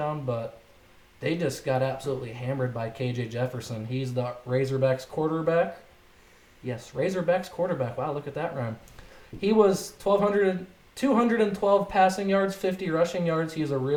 but they just got absolutely hammered by KJ Jefferson. He's the Razorbacks quarterback. Yes, Razorbacks quarterback. Wow, look at that rhyme. He was 212 passing yards, 50 rushing yards. He's a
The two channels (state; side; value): identical; both; correlation 1.00